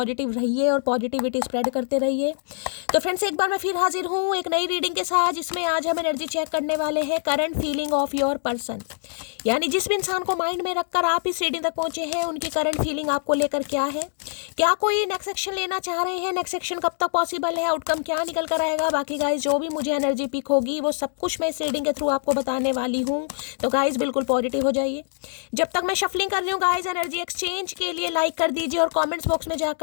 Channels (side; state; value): right; silent; digital silence